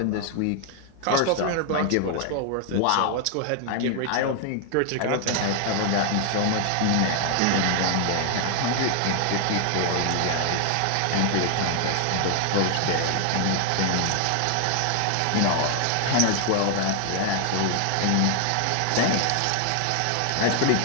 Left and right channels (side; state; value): both; different; correlation 0.00